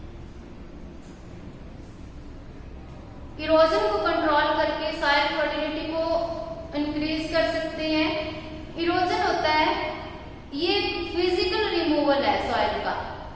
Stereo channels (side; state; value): both; identical; correlation 1.00